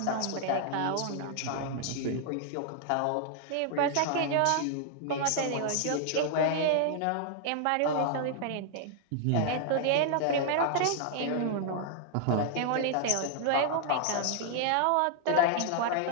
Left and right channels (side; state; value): both; different; correlation 0.00